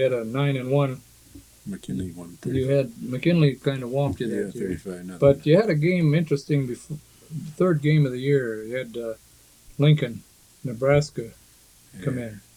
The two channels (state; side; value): identical; both; correlation 1.00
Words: had a 9 and 1. McKinley won. You had McKinley kind of whomped you Yeah, that year. 35-0. But you had a game interesting before the third game of the year. You had Lincoln, Nebraska come in,